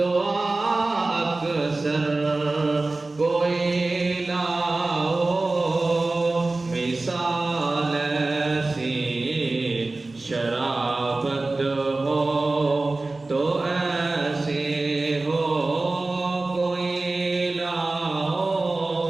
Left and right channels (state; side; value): quieter; left; 3.2 dB